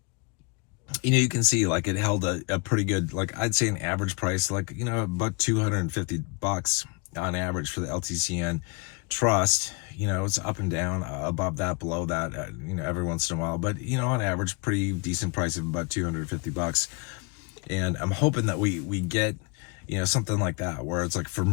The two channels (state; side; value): quieter; right; 29.1 dB